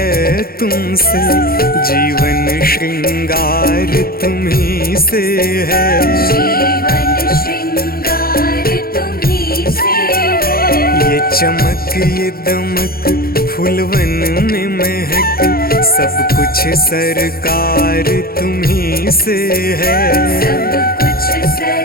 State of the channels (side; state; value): right; late; 0.44 ms